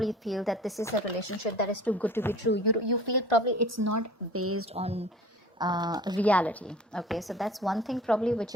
feel that this is a relationship that is too good to be true. You feel probably it's not based on reality, okay? So that's one thing probably which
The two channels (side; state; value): both; normal; correlation 0.44